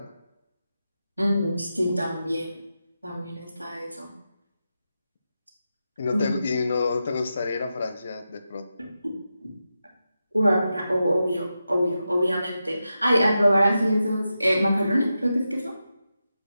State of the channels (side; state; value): both; inverted; correlation -0.89